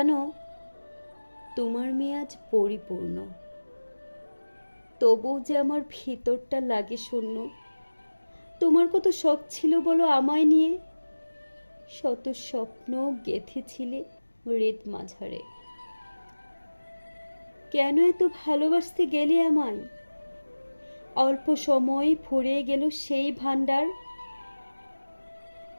তোমার মেয়ে আজ পরিপূর্ণ, তবুও যে আমার ভিতরটা লাগে শূন্য। তোমার কত শখ ছিল বলো আমায় নিয়ে, শত স্বপ্ন গেঁথেছিলে হৃদ মাঝারে। কেন এত ভালোবাসতে গেলে আমায়? অল্প সময় ফুরিয়ে গেল সেই ভান্ডার।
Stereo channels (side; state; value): both; inverted; correlation -1.00